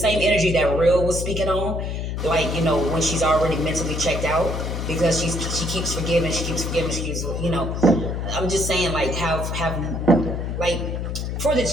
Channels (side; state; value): left; noise; hum, 3 dB below the sound